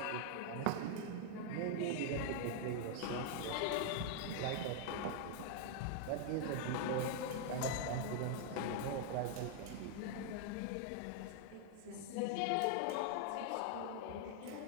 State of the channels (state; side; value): different; both; correlation 0.00